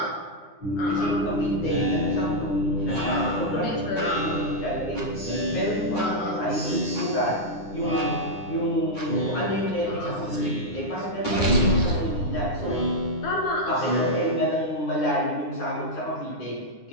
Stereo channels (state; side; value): late; right; 9.8 ms